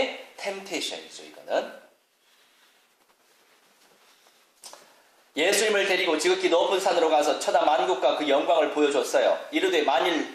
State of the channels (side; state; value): both; identical; correlation 1.00